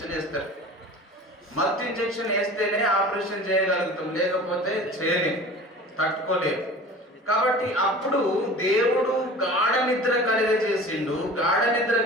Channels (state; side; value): normal; both; correlation 0.40